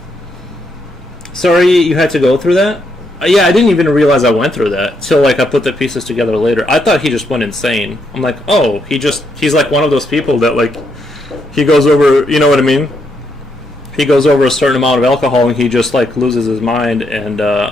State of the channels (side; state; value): both; normal; correlation 0.77